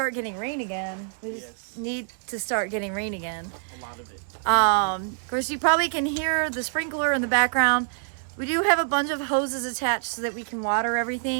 getting rain again. We just need to start getting rain again. A lot of it. Of course, you probably can hear the sprinkler in the background. We do have a bunch of hoses attached so that we can water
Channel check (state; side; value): silent; left; digital silence